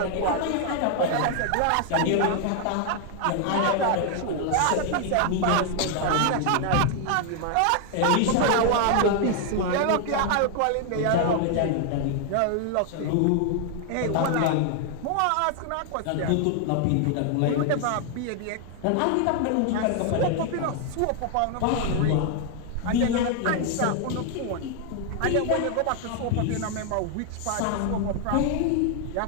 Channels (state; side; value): different; both; correlation 0.00